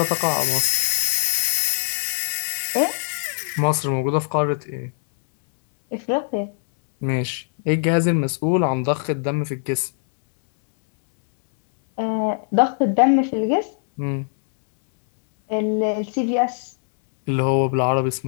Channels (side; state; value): right; silent; 65 dB below the other